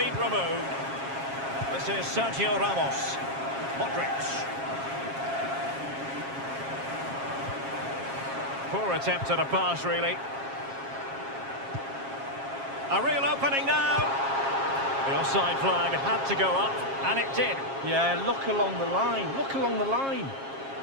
removed. This is Sergio Ramos. Modric. Poor attempt at a pass, really. A real opening now. The offside flag had to go up, and it did. Yeah, look along the line. Look along the line.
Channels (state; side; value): late; left; 7.4 ms